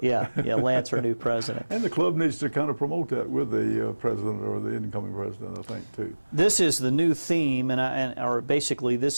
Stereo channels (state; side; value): inverted; both; correlation -1.00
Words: it. Yeah, Lance, our new president. And the club needs to kind of promote that with the president or the incoming president, I think, too. This is the new theme, or basically